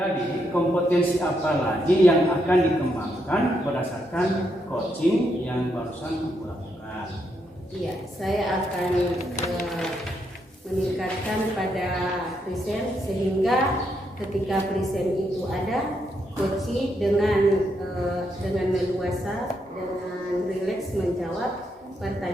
Jadi kompetensi apa lagi yang akan dikembangkan berdasarkan coaching yang barusan Ibu lakukan? Iya, saya akan meningkatkan pada present sehingga ketika present itu ada, coaching dengan leluasa, dengan rileks menjawab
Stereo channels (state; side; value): normal; both; correlation 0.79